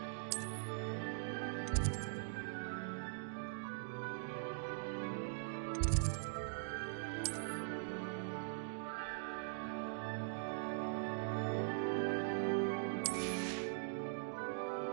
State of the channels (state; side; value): silent; left; digital silence